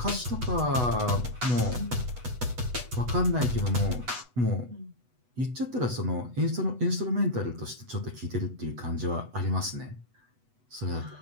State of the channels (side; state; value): left; late; 8.1 ms